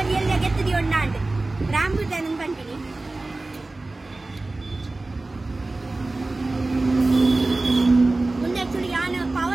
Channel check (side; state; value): left; quieter; 3.1 dB